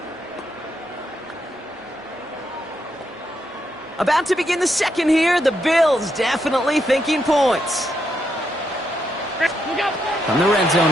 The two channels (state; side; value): normal; both; correlation 0.80